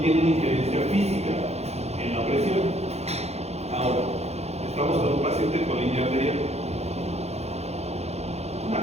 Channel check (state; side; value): late; left; 0.31 ms